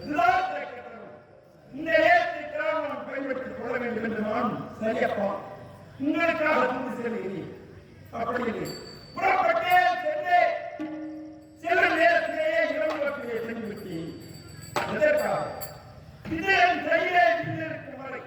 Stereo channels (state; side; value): identical; both; correlation 1.00